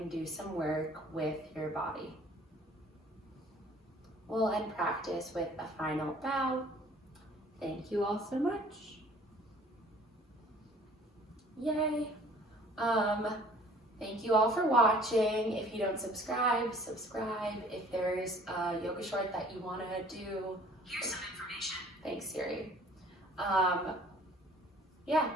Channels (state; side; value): normal; both; correlation 0.54